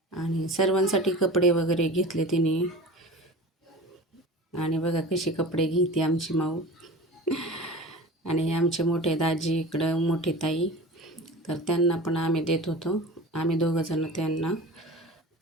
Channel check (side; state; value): both; normal; correlation 0.36